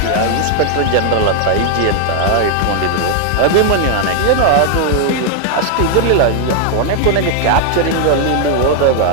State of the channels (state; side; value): different; both; correlation 0.00